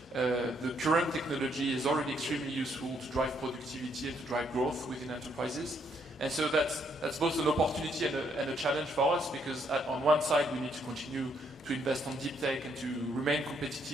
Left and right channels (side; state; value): both; normal; correlation 0.72